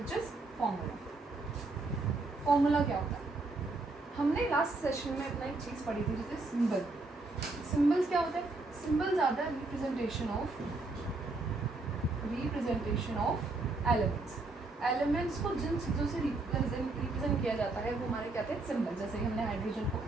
is formula. Formula क्या होता है? हमने लास्ट सेशन में अपना एक चीज़ पढ़ी थी जैसे सिंबल. सिंबल्स क्या होता है? Symbols are the representation of elements. Elements को जिन चीज़ों से रिप्रेजेंट किया जाता है वो हमारे क्या थे? सिंबल. जैसे कि हमने हाइड्रोजन को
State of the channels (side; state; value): left; quieter; 3.3 dB